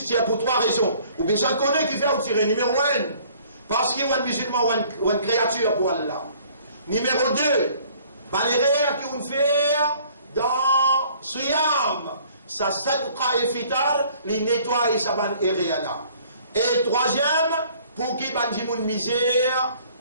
tire pour trois raisons. Ou bien ça connaît qui fait ou tirer. Numéro 1, parce qu'il y a un musulman ou une créature pour Allah. Numéro 2, les rêves qui vont faire dans Siyam. Ça Sadqa et Fitar, les nettoie et ça va là. Et troisième, pour qui va dire une misère,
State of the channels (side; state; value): both; inverted; correlation -0.57